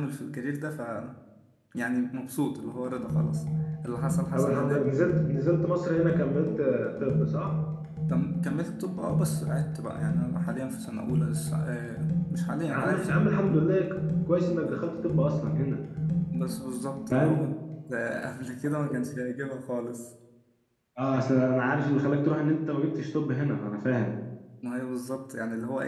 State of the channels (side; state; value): both; identical; correlation 1.00